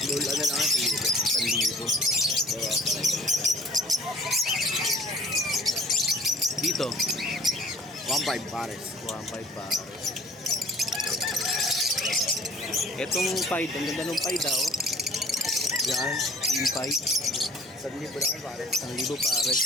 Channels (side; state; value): both; normal; correlation 0.51